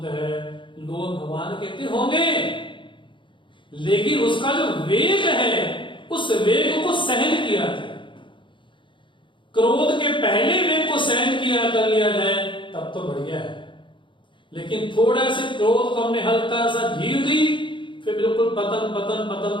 है, लोग भगवान कहते होंगे, लेकिन उसका जो वेग है उस वेग को सहन किया जाए। क्रोध के पहले वेग को सहन किया कर लिया जाए तब तो बढ़िया है। लेकिन थोड़ा से क्रोध को हमने हल्का सा ढील दी, फिर बिल्कुल पतन पतन पतन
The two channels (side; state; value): right; late; 0.24 ms